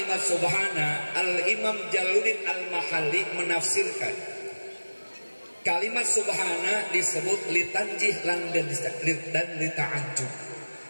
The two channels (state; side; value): inverted; both; correlation -1.00